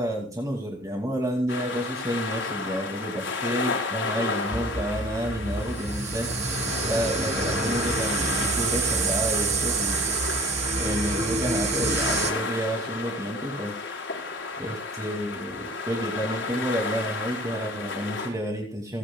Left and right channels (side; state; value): both; normal; correlation 0.46